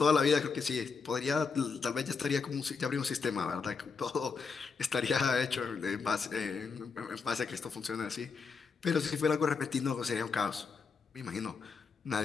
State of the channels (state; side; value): quieter; right; 5.1 dB